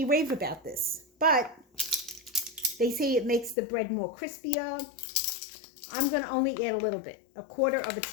rave about this. But they say it makes the bread more crispier. I'm going to only add a little bit. 1/4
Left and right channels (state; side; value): drops out; right; at 3.6 s